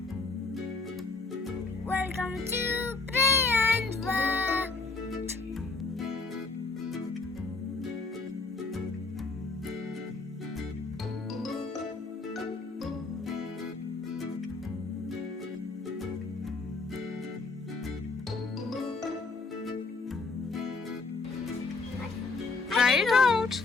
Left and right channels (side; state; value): right; quieter; 4.0 dB